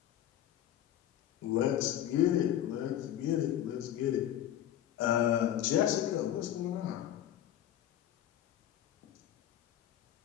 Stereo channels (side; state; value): right; quieter; 11.6 dB